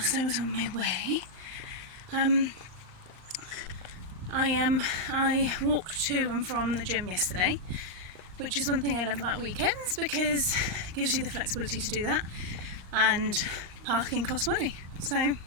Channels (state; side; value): late; left; 38 ms